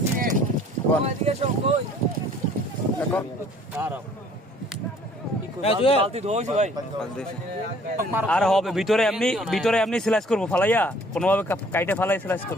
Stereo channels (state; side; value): normal; both; correlation 0.56